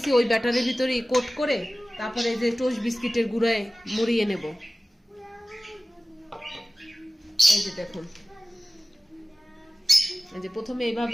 ওই ব্যাটারের ভিতরে কোট করে তারপরে এই যে টোস্ট বিস্কিটের গুঁড়ায় মুড়িয়ে নেব। এই যে দেখুন, এই যে প্রথমে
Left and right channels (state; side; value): normal; both; correlation 0.96